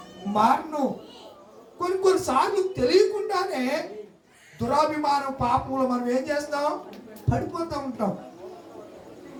మారను. కొన్నిసార్లు తెలియకుండానే దురాభిమానం పాపంలో మనం ఏం చేస్తాం? పడిపోతూ ఉంటాం.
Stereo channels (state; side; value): identical; both; correlation 1.00